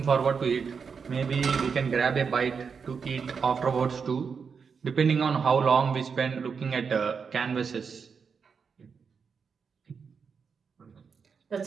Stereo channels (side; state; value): left; quieter; 5.9 dB